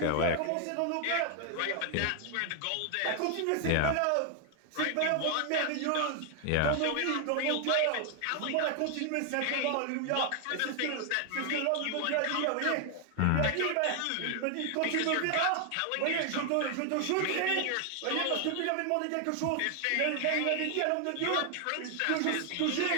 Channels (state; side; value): different; both; correlation 0.00